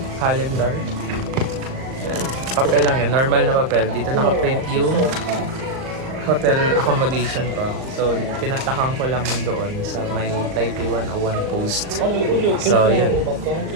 calendar. Yan. Papel lang yan. Normal na papel. Dito naka-print yung hotel accommodation ko. So, pinatakan ko lang doon sa may Taipei 101 post. So, yun.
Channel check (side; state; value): left; late; 38 ms